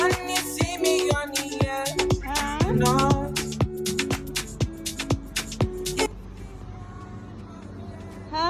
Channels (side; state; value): both; identical; correlation 1.00